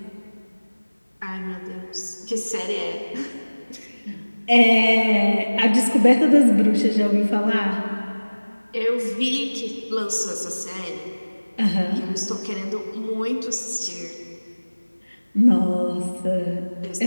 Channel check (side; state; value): both; inverted; correlation -1.00